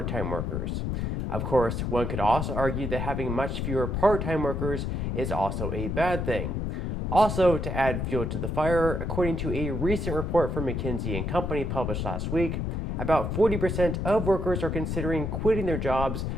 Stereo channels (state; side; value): noise; left; rumble, 2 dB below the sound